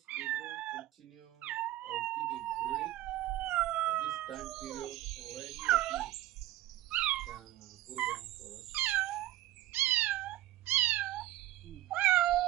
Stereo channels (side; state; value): left; quieter; 15.0 dB